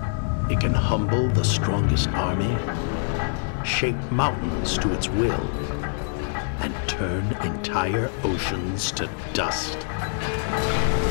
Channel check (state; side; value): silent; right; 56 dB below the other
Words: It can humble the strongest army, shape mountains to its will, and turn entire oceans to dust.